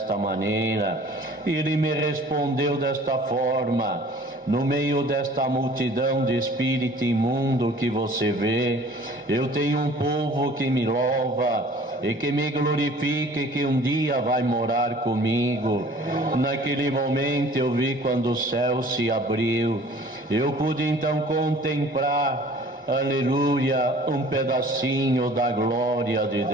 maneira?". Ele me respondeu desta forma: "No meio desta multidão de espírito imundo que você vê, eu tenho um povo que me louva e que me glorifica e que um dia vai morar comigo". Naquele momento eu vi, quando o céu se abriu, eu pude então contemplar, aleluia, um pedacinho da glória de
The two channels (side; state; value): both; normal; correlation 0.50